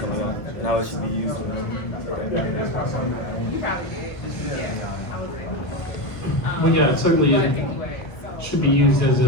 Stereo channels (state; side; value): late; right; 1.3 ms